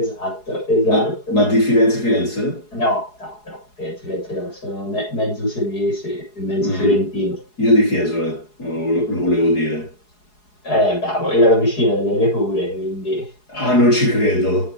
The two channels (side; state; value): right; late; 4.8 ms